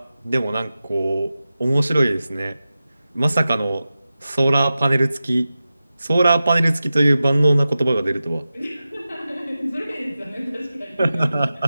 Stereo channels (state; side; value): inverted; both; correlation -0.94